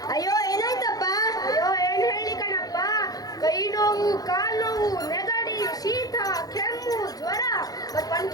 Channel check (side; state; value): right; late; 0.18 ms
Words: ಅಯ್ಯೋ ಏನಾಯ್ತಪ್ಪ? ಅಯ್ಯೋ ಏನ್ ಹೇಳಿ ಕಣಪ್ಪ, ಕೈ ನೋವು, ಕಾಲ್ ನೋವು, ನೆಗಡಿ, ಶೀತ, ಕೆಮ್ಮು, ಜ್ವರ, ಮತ್